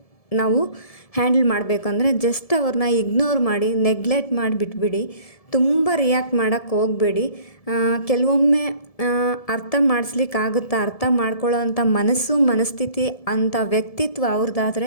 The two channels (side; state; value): right; late; 1.7 ms